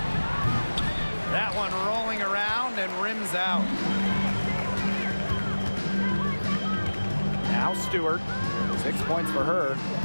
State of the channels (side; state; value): both; inverted; correlation -1.00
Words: That one rolling around and rims out. Now Stewart. 6 points for her.